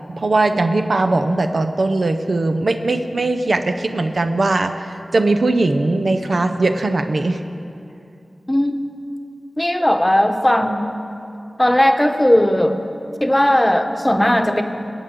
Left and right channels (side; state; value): both; normal; correlation 0.97